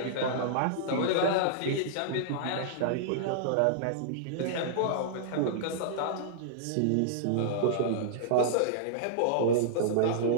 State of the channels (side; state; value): both; different; correlation -0.02